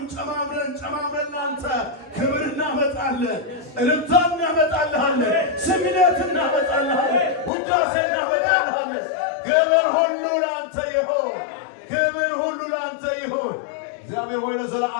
ጨማምረን ላንተ ክብር እናመጣለን፣ እልልታ እናመጣልሃለን፣ ስግደት እናመጣልሃለን፣ ውዳሴ እናመጣልሃለን። ክብር ሁሉ ላንተ ይሁን፣ ክብር ሁሉ ላንተ ይሁን። እግዚአብሔር ሆይ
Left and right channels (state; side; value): drops out; right; at 7.5 s